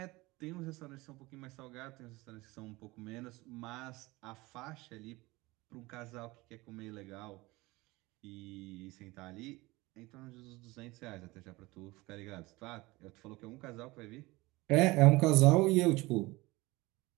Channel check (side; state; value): left; quieter; 21.6 dB